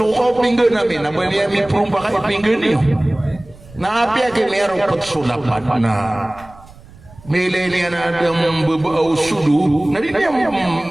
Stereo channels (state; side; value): noise; right; rumble, 22 dB below the sound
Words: pinggan namin na bali mi prong baka pinggan niyo. Naapi ake merong pagsulapan na melele na dam bebau sudu na di